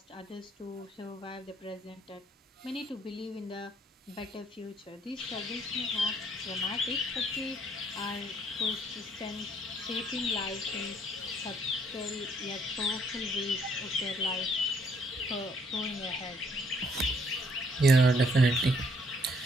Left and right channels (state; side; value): normal; both; correlation 0.67